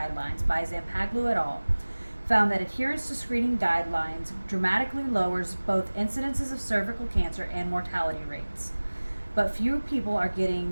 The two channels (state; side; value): inverted; both; correlation -1.00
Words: by Zampaglu et al. Found that adherence to screening guidelines dramatically lowers both incidences of cervical cancer and mortality rates. But fewer people are